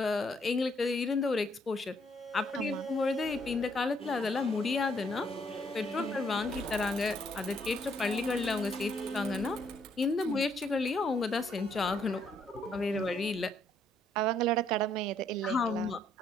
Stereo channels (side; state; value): both; normal; correlation 0.70